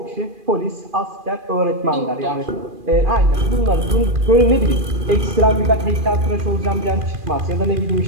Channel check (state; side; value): late; left; 2.4 ms